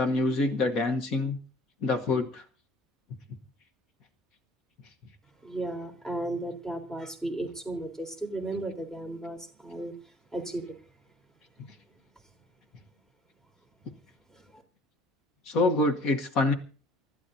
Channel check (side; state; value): both; normal; correlation 0.56